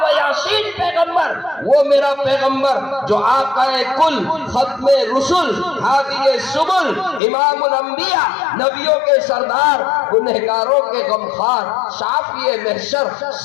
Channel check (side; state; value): right; drops out; at 7.2 s